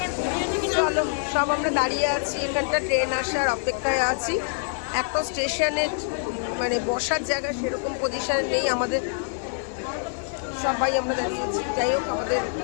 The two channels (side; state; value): right; silent; digital silence